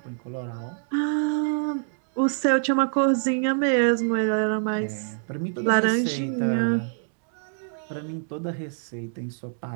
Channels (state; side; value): silent; left; digital silence